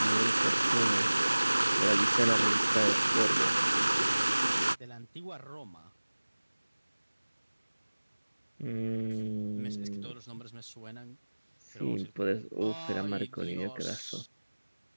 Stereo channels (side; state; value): both; inverted; correlation -1.00